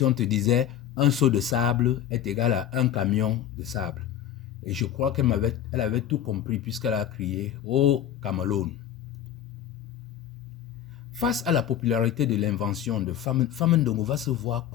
on te disait, un seau de sable est égal à un camion de sable. Et je crois qu'elle avait tout compris puisqu'elle a crié « Oh, Cameroun !» Face à la popularité de l'invention de Famin-Ndongo va se voir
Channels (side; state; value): right; quieter; 10.7 dB